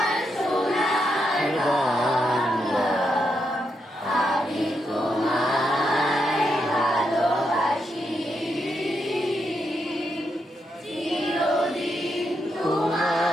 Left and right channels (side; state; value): both; normal; correlation 0.82